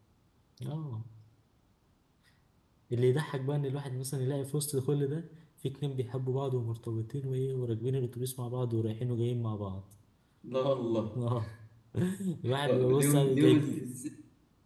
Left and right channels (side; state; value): both; identical; correlation 1.00